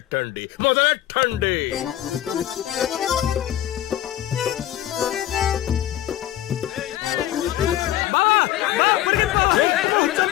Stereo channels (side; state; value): right; quieter; 13.3 dB